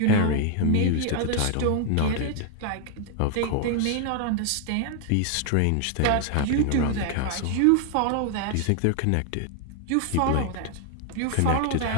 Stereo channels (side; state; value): both; different; correlation 0.00